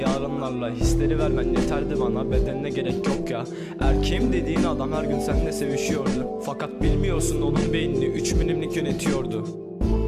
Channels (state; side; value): identical; both; correlation 1.00